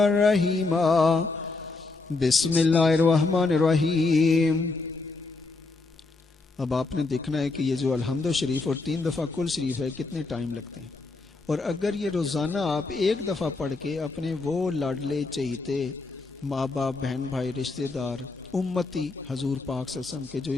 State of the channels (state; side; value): quieter; right; 3.6 dB